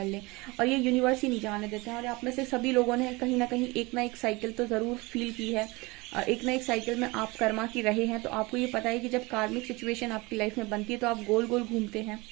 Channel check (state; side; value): quieter; left; 24.1 dB